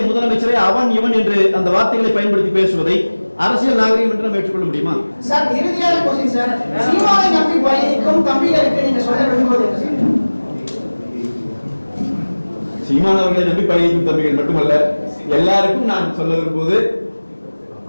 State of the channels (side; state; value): both; inverted; correlation -1.00